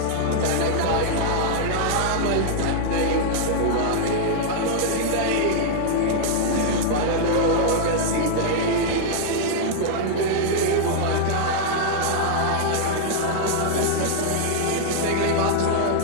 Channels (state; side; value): different; both; correlation -0.01